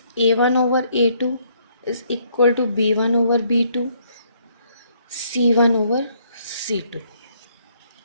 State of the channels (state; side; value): inverted; both; correlation -0.69